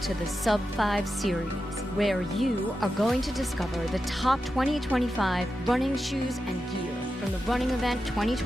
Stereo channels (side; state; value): both; normal; correlation 0.90